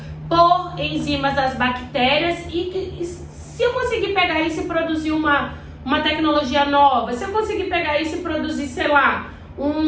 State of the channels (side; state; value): both; identical; correlation 1.00